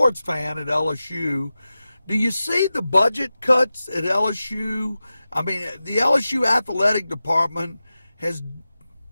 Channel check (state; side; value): inverted; both; correlation -0.94